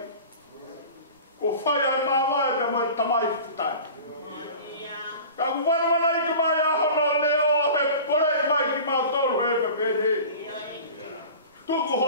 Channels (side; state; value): both; inverted; correlation -0.38